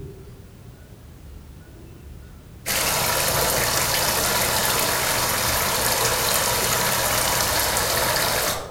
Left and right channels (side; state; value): both; identical; correlation 1.00